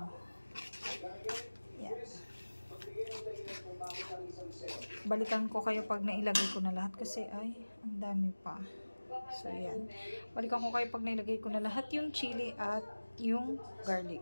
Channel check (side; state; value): both; inverted; correlation -1.00